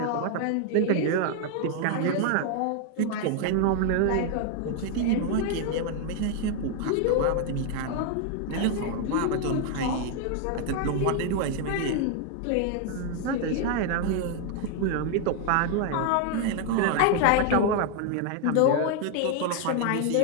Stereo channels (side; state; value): both; different; correlation 0.00